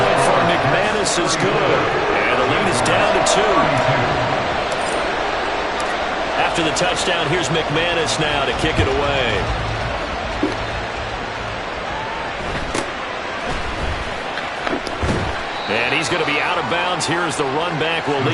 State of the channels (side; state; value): both; identical; correlation 1.00